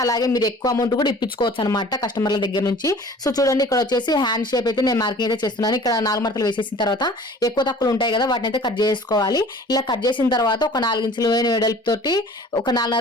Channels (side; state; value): both; normal; correlation 0.47